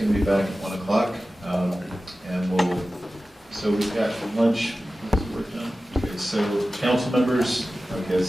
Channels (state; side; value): normal; both; correlation 0.95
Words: to be back at 1 o'clock, and so we've got lunch, what's the work done? Okay, so council members, okay,